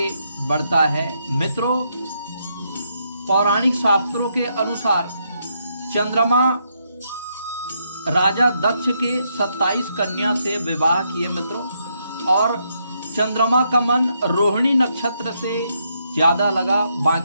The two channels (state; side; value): inverted; both; correlation -0.77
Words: बढ़ता है। मित्रों, पौराणिक शास्त्रों के अनुसार चंद्रमा राजा दक्ष के 27 कन्या से विवाह किए मित्रों, और चंद्रमा का मन रोहिणी नक्षत्र से ज्यादा लगा।